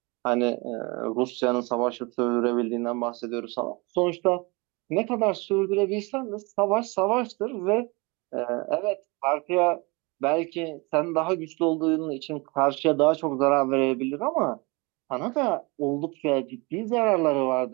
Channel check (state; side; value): quieter; left; 27.3 dB